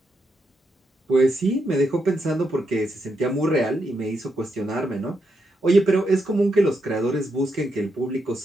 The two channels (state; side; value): normal; both; correlation 0.82